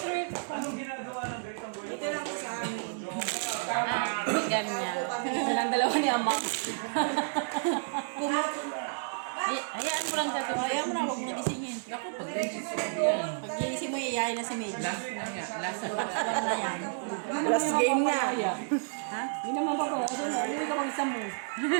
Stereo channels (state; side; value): silent; left; 57 dB below the other